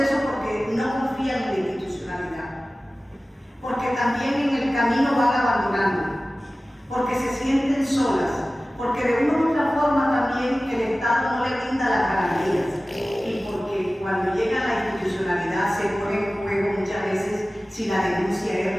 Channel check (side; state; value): both; normal; correlation 0.97